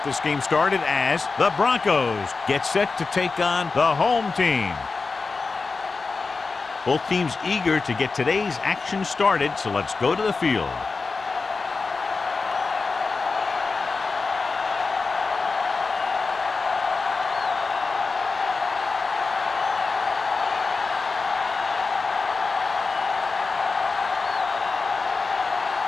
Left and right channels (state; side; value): quieter; right; 4.2 dB